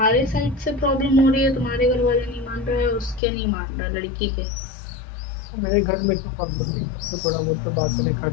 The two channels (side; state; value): right; drops out; at 3.2 s